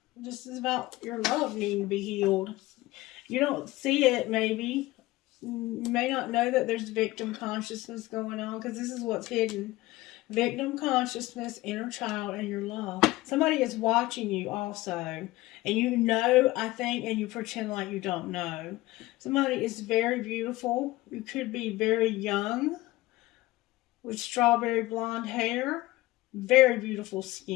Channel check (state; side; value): quieter; right; 18.6 dB